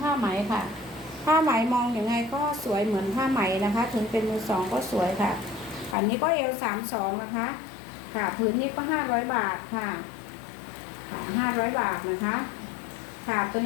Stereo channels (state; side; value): drops out; right; at 6.0 s